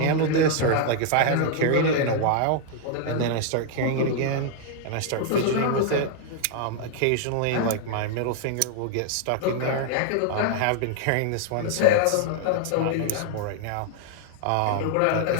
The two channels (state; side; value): different; both; correlation 0.00